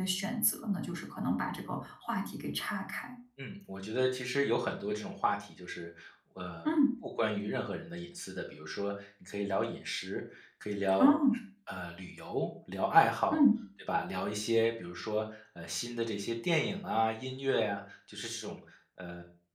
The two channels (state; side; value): identical; both; correlation 1.00